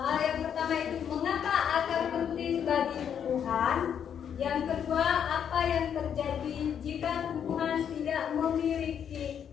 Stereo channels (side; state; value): right; quieter; 8.4 dB